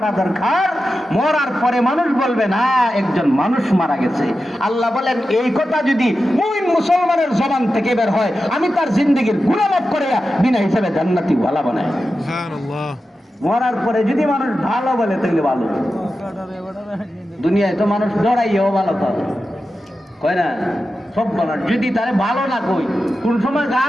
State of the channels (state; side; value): normal; both; correlation 0.92